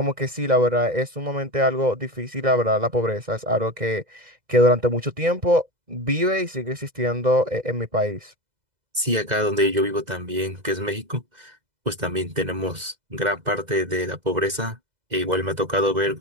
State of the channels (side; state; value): left; late; 2.0 ms